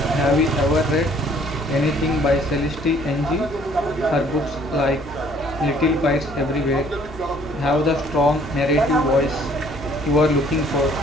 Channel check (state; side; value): normal; both; correlation 0.59